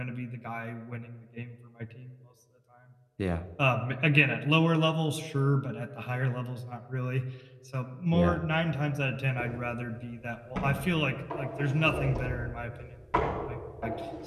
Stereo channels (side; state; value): both; identical; correlation 1.00